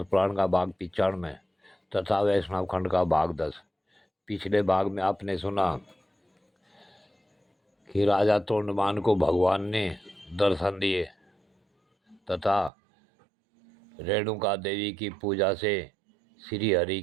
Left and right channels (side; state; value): left; drops out; at 12.7 s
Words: पुराण का भाग 95 तथा वैष्णव खंड का भाग 10। पिछले भाग में आपने सुना कि राजा तोंडमान को भगवान ने दर्शन दिए तथा रेणुका देवी की पूजा से श्री हरि